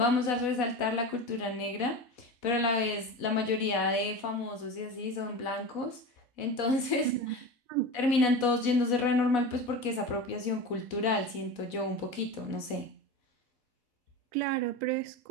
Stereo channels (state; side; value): late; right; 4.1 ms